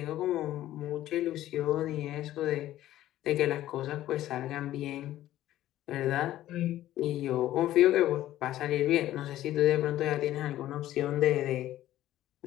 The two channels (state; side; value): quieter; right; 13.8 dB